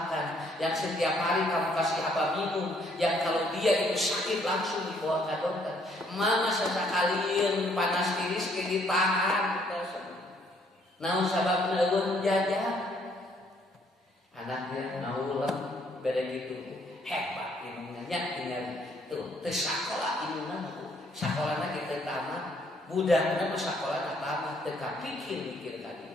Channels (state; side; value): normal; both; correlation 0.66